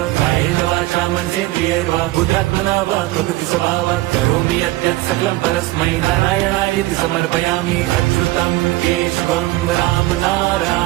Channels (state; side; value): quieter; left; 18.6 dB